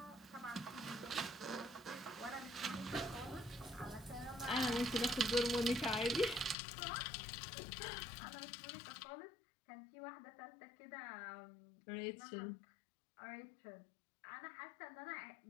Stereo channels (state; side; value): drops out; right; at 6.6 s